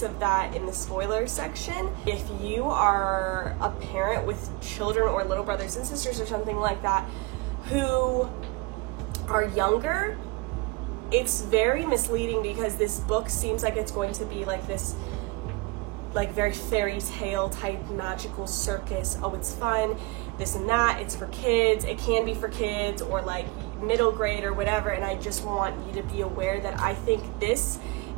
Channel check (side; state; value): left; quieter; 24.7 dB